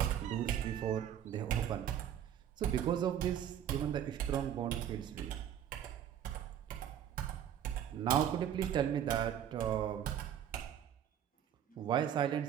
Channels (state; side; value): quieter; left; 10.0 dB